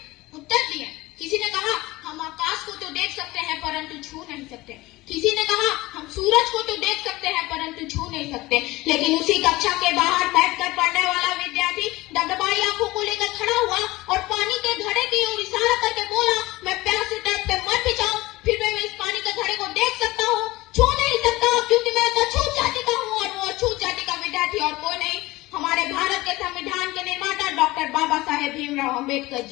उत्तर दिए। किसी ने कहा हम आकाश को तो देख सकते हैं परंतु छू नहीं सकते। किसी ने कहा हम सूरज को तो देख सकते हैं परंतु छू नहीं सकते। लेकिन उसी कक्षा के बाहर बैठकर पढ़ने वाला विद्यार्थी डगडगाई आंखों को लेकर खड़ा हुआ और पानी के घड़े की ओर इशारा करके बोला, मैं प्यास से तड़पते मर भी जाऊं फिर मैं इस पानी के घड़े को देख सकता हूँ, छू नहीं सकता क्योंकि मैं तो अछूत जाति का हूँ। और वो अछूत जाति का विद्यार्थी और कोई नहीं, हमारे भारत के संविधान के निर्माता डॉक्टर बाबा साहेब भीमराव अम्बेडकर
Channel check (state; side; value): quieter; right; 19.7 dB